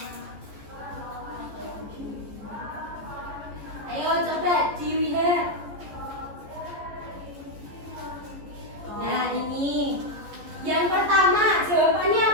Ayo coba dilihat. Nah, ini yang pertama, jawabannya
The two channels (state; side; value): late; left; 14 ms